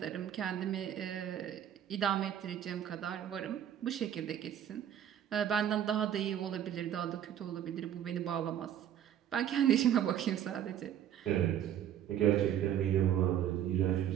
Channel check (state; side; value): quieter; left; 10.4 dB